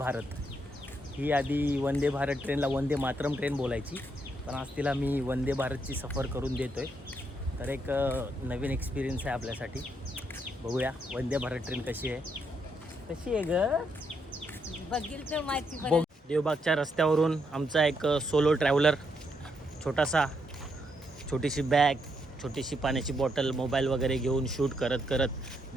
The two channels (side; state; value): both; normal; correlation 0.77